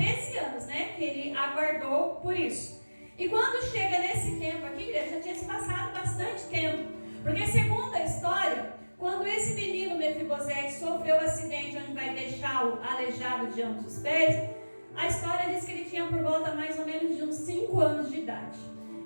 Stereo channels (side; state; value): both; inverted; correlation -1.00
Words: anos, né, que ele aguardou por isso. E quando chega nesse tempo aqui, igreja, já tinha se passado bastante tempo, porque segundo a história, quando esse menino Mefibosete sofreu o acidente onde vai deixá-lo aleijado de ambos os pés, a história diz que ele tinha por volta mais ou menos de uns 5 anos de idade.